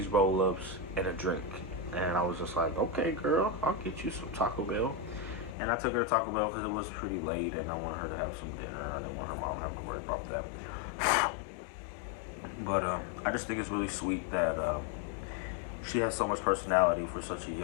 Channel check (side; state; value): right; drops out; at 5.6 s